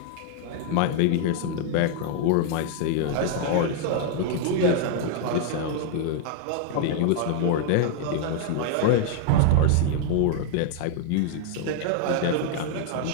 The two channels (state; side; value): different; both; correlation 0.00